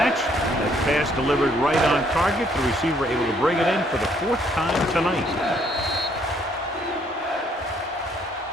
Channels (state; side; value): normal; both; correlation 0.67